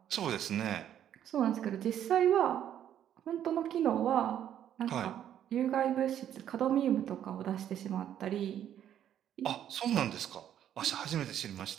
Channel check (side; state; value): left; quieter; 10.4 dB